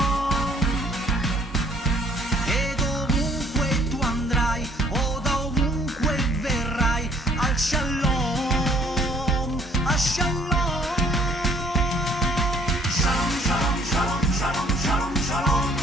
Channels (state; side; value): normal; both; correlation 0.60